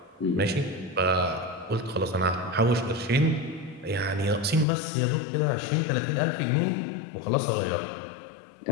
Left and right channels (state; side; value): drops out; right; at 4.7 s